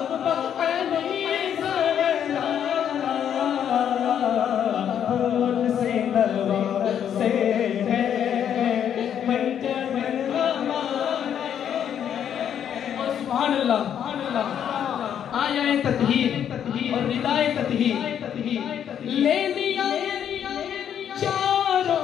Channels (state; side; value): quieter; right; 9.1 dB